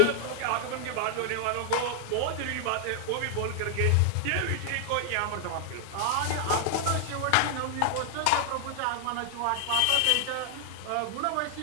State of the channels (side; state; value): both; different; correlation 0.00